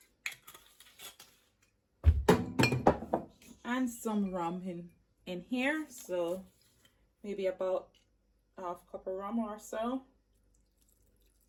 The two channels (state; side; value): identical; both; correlation 1.00